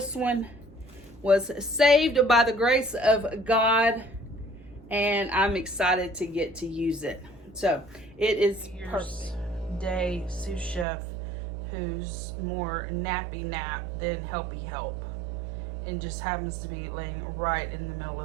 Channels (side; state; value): left; drops out; at 10.9 s